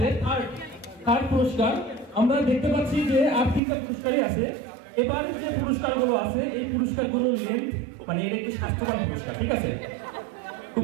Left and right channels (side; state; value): left; drops out; at 3.6 s